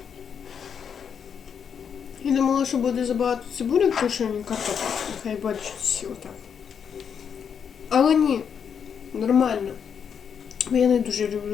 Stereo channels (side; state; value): right; quieter; 7.3 dB